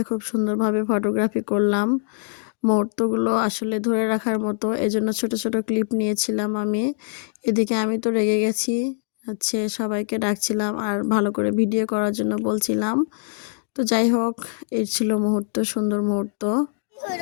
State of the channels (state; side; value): silent; right; digital silence